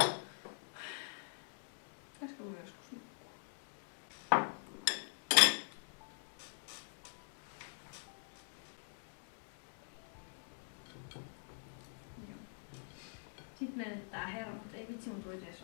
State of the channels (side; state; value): right; silent; digital silence